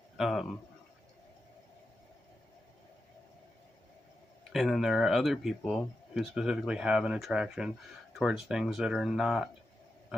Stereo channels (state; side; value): normal; both; correlation 0.89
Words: And then there are other people who specifically have an attraction towards things that are not